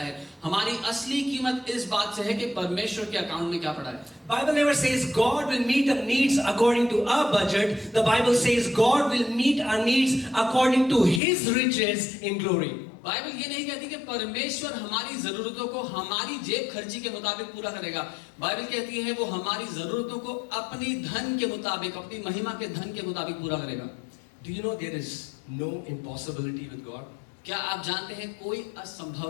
हमारी असली कीमत इस बात से है कि परमेश्वर के अकाउंट में क्या पड़ा है। Bible never says God will meet our needs according to our budget. The Bible says God will meet our needs according to His riches in glory. Bible ये नहीं कहती कि परमेश्वर हमारी जरूरतों को हमारी जेब खर्ची के मुताबिक पूरा करेगा। बाइबल कहती है वो हमारी जरूरतों को अपनी धन के मुताबिक, अपनी महिमा के धन के मुताबिक पूरा करेगा। Do you know there is no impossibility with God? क्या आप जानते हैं कोई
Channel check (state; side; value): drops out; right; at 11.2 s